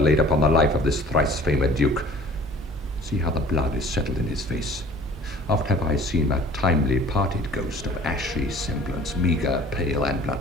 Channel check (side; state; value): both; normal; correlation 0.49